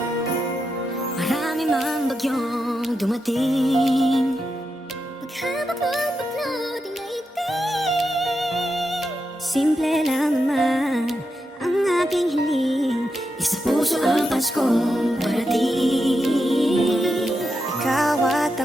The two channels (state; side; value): normal; both; correlation 0.86